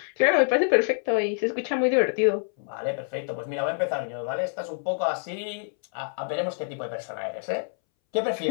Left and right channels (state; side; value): silent; right; 60 dB below the other